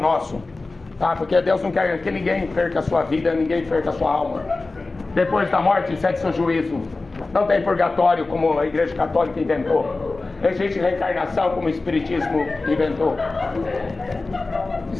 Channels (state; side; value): quieter; right; 3.4 dB